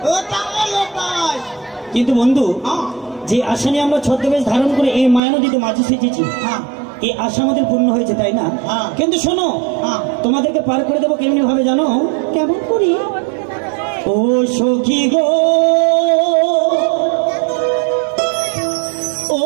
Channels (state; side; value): drops out; left; at 5.2 s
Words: কিন্তু বন্ধু, যে আশা নিয়ে আমরা ছদ্মবেশ ধারণ করে এই মায়া নদীতে মাঝে সেচেছি, এই আশা আমাদের পূর্ণ হয়েছে, তাই না? কিন্তু শোনো, তোমাদেরকে পার করে দেবো কেমনি ভাবে জানো? কেমন করি? ও সখী গো, ও